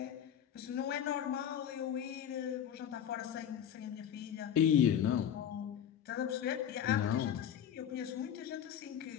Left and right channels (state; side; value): quieter; right; 9.4 dB